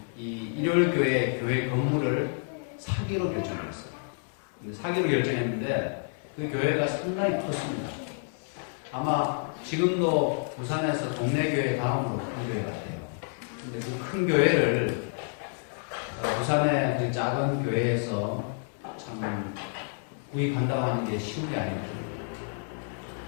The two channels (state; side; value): silent; right; 59 dB below the other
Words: 이 일요일교회 교회 건물을 사기로 결정했어요. 사기로 결정했는데 그 교회가 상당히 컸습니다. 아마 지금도 부산에서 동네 교회 다음으로 큰 교회 같아요. 근데 그 큰 교회를 부산의 그 작은 교회에서 참 구입한다고 하는 게 쉬운 게 아니거든요.